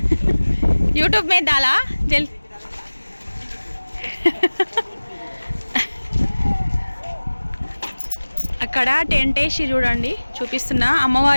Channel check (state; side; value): inverted; both; correlation -1.00